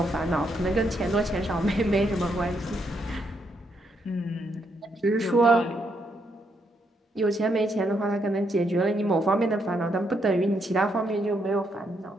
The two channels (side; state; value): both; normal; correlation 0.77